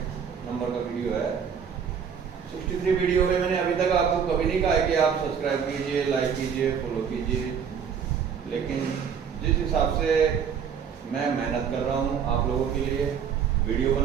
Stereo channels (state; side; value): quieter; left; 7.3 dB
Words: नंबर का वीडियो है। 63 वीडियो में मैंने अभी तक आपको कभी नहीं कहा है कि आप सब्सक्राइब कीजिए, लाइक कीजिए, फॉलो कीजिए, लेकिन जिस हिसाब से मैं मेहनत कर रहा हूँ आप लोगों के लिए, वीडियो